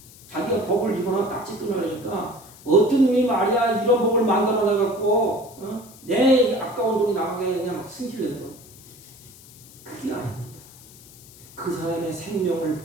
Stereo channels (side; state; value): left; noise; hiss, 21 dB below the sound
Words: 자기가 법을 입거나 딱지 끊으려니까 어떤 놈이 말이야 이런 법을 만들어내갖고 내 아까운 돈이 나가게 그냥 막 승질내는 거. 그게 아닙니다. 그 사람의 생명을